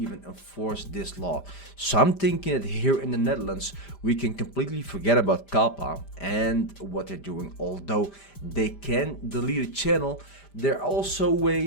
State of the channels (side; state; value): right; late; 5.0 ms